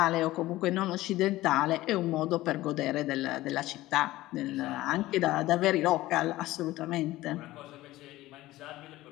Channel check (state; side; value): quieter; right; 17.0 dB